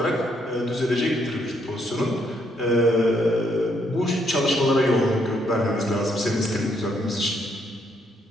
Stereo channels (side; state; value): both; normal; correlation 0.73